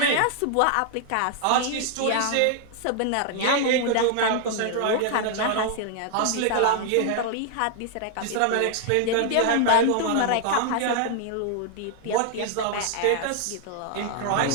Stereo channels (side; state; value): both; different; correlation 0.00